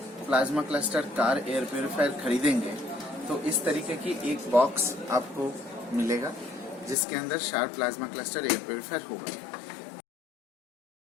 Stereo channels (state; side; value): drops out; right; at 7.0 s